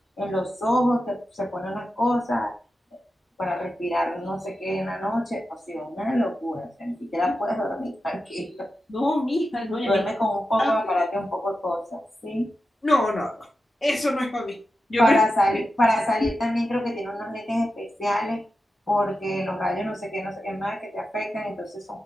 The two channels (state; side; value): normal; both; correlation 0.91